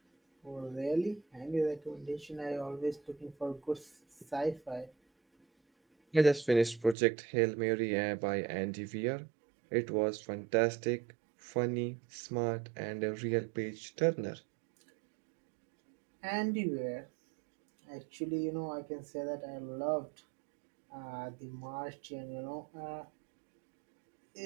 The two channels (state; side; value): drops out; left; at 7.0 s